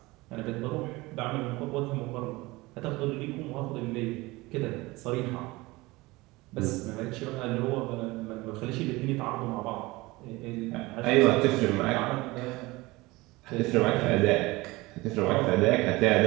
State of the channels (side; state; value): left; quieter; 21.6 dB